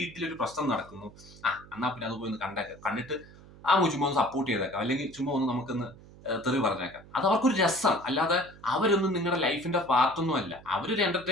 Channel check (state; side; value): noise; right; hum, 21 dB below the sound